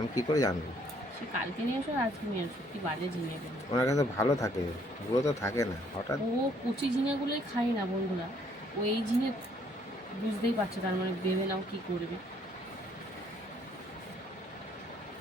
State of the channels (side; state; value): both; normal; correlation 0.65